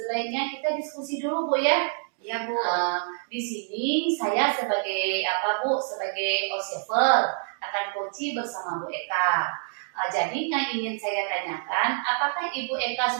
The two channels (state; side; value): silent; left; 59 dB below the other